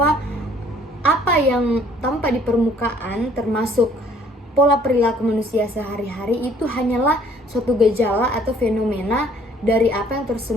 apa yang tampak di permukaan termasuk pola perilaku manusia sehari-hari itu hanyalah suatu gejala atau fenomena dari apa yang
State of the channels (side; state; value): both; normal; correlation 0.59